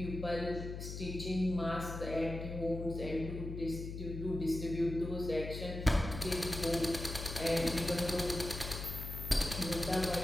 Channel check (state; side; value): noise; left; hum, 7 dB below the sound